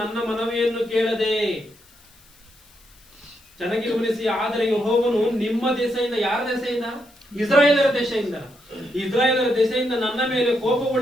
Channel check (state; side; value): noise; left; hiss, 28 dB below the sound